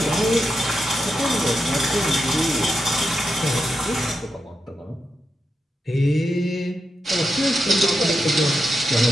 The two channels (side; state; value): both; normal; correlation 0.86